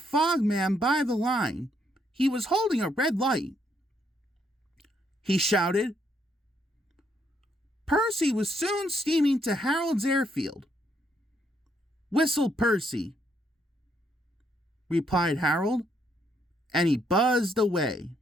by the line. He was holding a red light. He shouted. Percy was soon steaming to Harold's airfield. Whistled Percy, replied Harold, and he buzzed away.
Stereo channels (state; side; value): normal; both; correlation 0.73